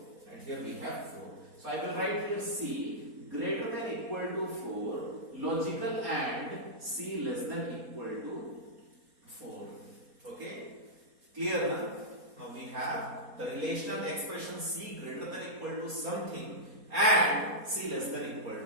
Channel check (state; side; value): late; left; 4.2 ms